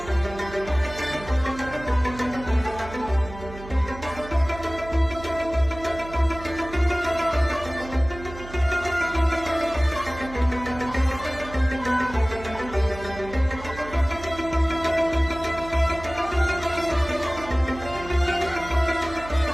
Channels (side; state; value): right; noise; hum, 14 dB below the sound